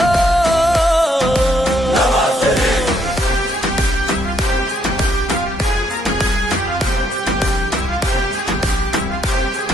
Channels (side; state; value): both; normal; correlation 0.71